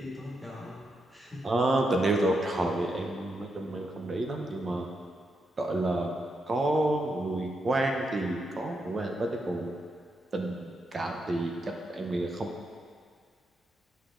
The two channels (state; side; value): normal; both; correlation 0.82